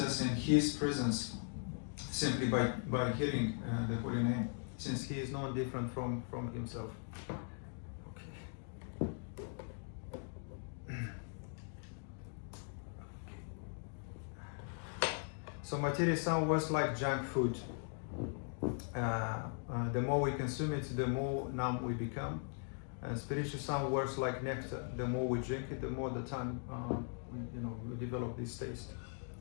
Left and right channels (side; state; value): right; silent; 51 dB below the other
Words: in his presence simply by hearing the holy name, since he is no different from himself. So material sound works like junk food. The more we consume it, the more numb we become. And spiritual sound works like nectar. The more we drink it, the more the time we develop this taste.